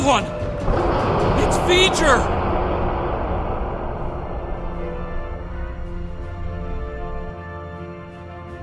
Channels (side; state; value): both; identical; correlation 1.00